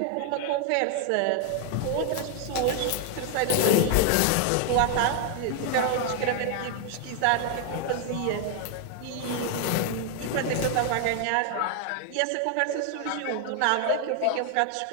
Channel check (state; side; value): different; both; correlation 0.00